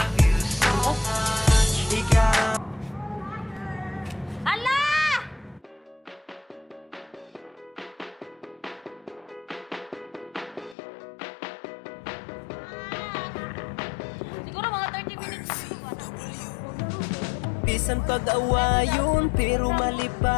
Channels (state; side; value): drops out; right; at 10.8 s